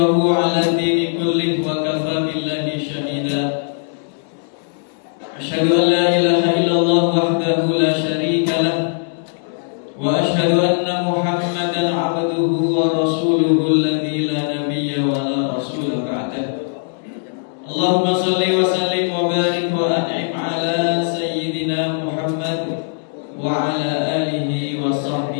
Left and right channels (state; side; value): silent; right; digital silence